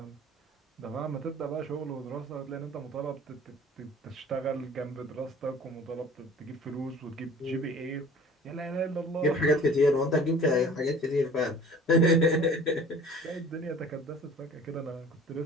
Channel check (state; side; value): normal; both; correlation 0.47